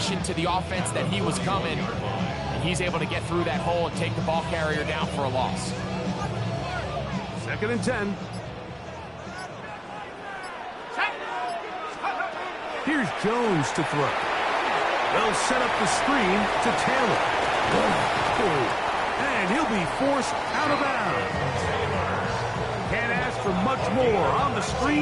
to the offense that he was coming. And he's able to get through that hole and take the ball carrier down for a loss. 2nd and 10. Here's Jones to throw. They'll set up the screen to Taylor. And he'll be forced out of bounds. Can't ask for much more. On the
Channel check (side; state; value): both; identical; correlation 1.00